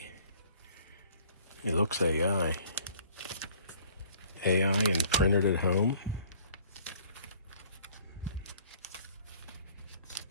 It looks AI. AI and printed at home.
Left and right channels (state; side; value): inverted; both; correlation -0.55